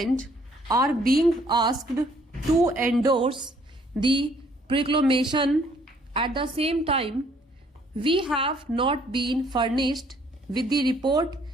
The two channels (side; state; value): both; normal; correlation 0.63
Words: are being asked to endorse the proclamation. At the same time, we have not been furnished with the report